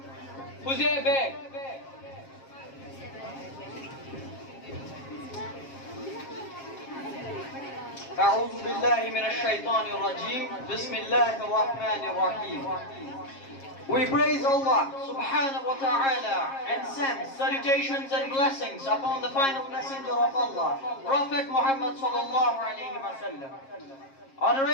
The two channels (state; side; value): late; right; 7.4 ms